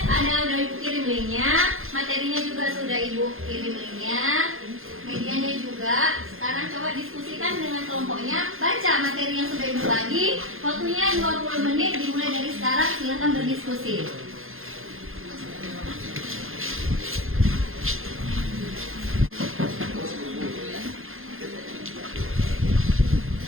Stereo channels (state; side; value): late; left; 0.60 ms